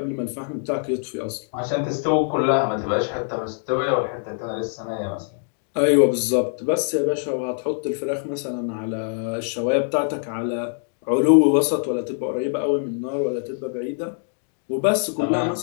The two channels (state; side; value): silent; right; digital silence